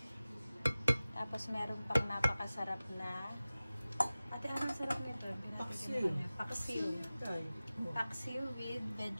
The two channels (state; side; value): inverted; both; correlation -0.97